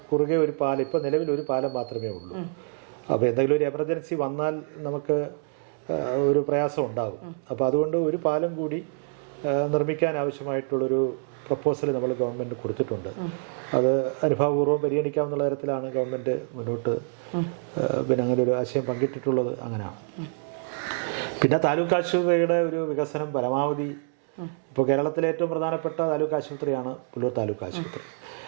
കുറുകെ ഒരു പാലം, ഇപ്പോൾ നിലവിൽ ഒരു പാലം മാത്രമേ ഉള്ളൂ. അപ്പോൾ എന്തെങ്കിലും ഒരു എമർജൻസി വന്നാൽ നമുക്ക് ഒരു പ്രയാസം ഉണ്ടാകും. അപ്പോൾ അതുകൊണ്ട് ഒരു പാലം കൂടി നിർമ്മിക്കാൻ ആവശ്യമായിട്ടുള്ളൊരു പ്രപ്പോസൽ നമ്മൾ ഗവൺമെൻറ് കൊടുത്തിട്ടുണ്ട്. അത് അനുഭാവപൂർവ്വം പരിഗണിക്കാവുന്ന തരത്തിലാണ് ഗവൺമെൻറ് മുന്നോട്ട് അങ്ങനെ ഒരു ആശയം പങ്കിട്ടിട്ടുള്ളത്. അങ്ങനെയാണ്. പിന്നെ താലൂക്ക് ആശുപത്രിയുടെ ഒരു വികസനം പരമാവധി, ഇപ്പോൾ കേരളത്തിലെ ഏറ്റവും പ്രധാനപ്പെട്ട താലൂക്ക് ആശുപത്രിയാണ് പുല്ലൂർ താലൂക്ക് ആശുപത്രി.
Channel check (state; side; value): silent; left; 60 dB below the other